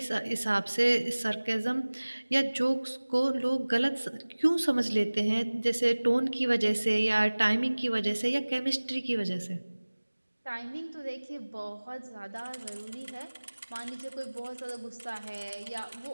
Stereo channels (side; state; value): both; inverted; correlation -1.00